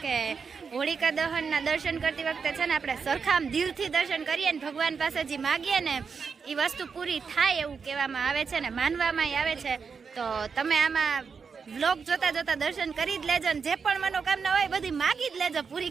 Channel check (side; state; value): left; quieter; 5.7 dB